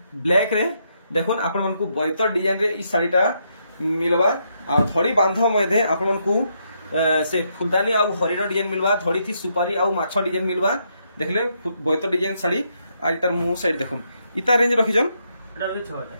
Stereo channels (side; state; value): both; inverted; correlation -0.77